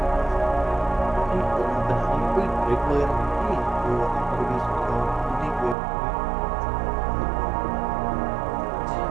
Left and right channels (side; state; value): left; drops out; at 5.8 s